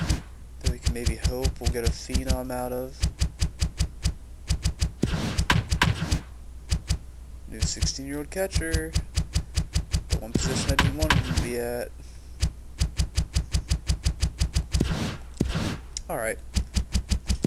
that we can maybe hope we'll get a phenom out of. New 16-year-old catcher. The one position I didn't want him to be at. Alright.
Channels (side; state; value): both; identical; correlation 1.00